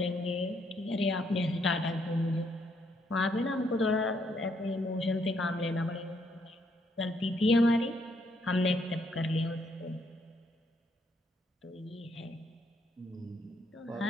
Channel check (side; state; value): both; normal; correlation 0.73